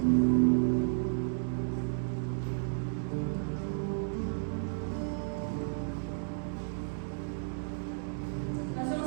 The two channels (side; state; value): left; silent; digital silence